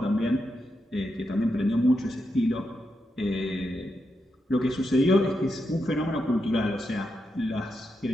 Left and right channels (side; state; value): both; normal; correlation 0.85